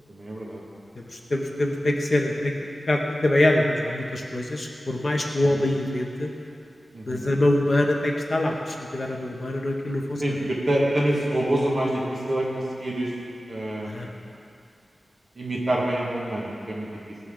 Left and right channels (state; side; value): normal; both; correlation 0.94